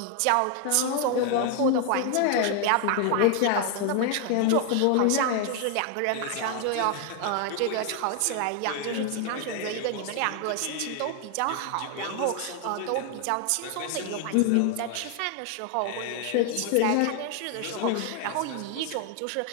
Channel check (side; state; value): both; different; correlation 0.00